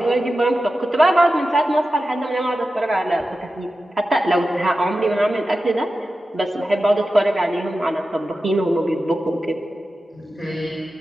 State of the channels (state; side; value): normal; both; correlation 0.93